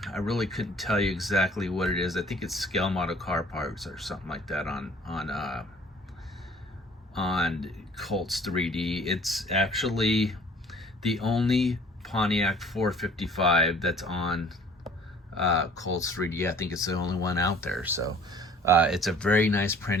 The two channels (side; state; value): both; normal; correlation 0.53